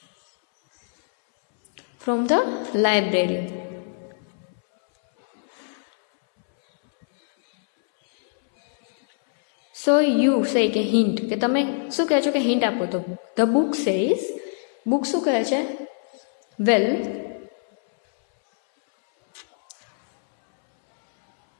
from the library. So you say કે હિન્ટ, કે તમે શું કહે છો કે હિન્ટ આપો. તો ધ બુક સેઝ, બુક શું કહે છે? વેલ,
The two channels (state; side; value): silent; right; 63 dB below the other